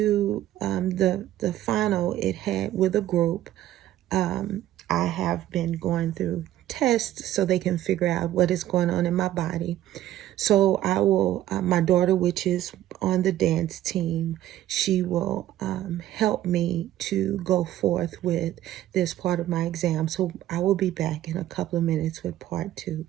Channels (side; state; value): left; quieter; 13.3 dB